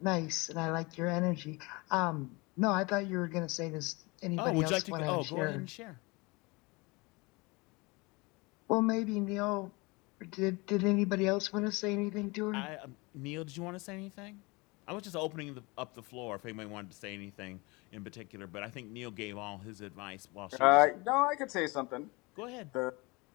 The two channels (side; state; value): right; quieter; 25.8 dB